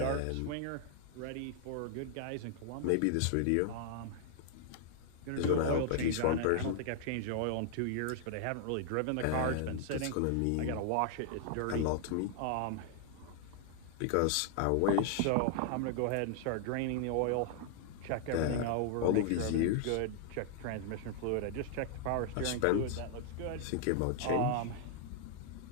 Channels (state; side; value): different; both; correlation 0.00